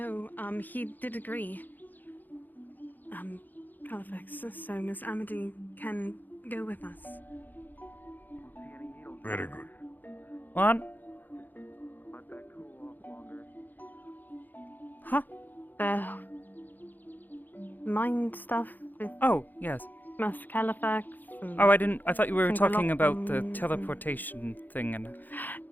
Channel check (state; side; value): late; right; 0.086 ms